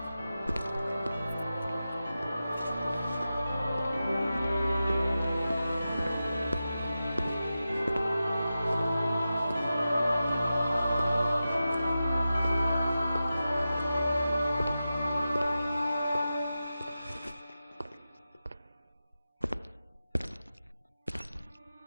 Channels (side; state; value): both; inverted; correlation -0.93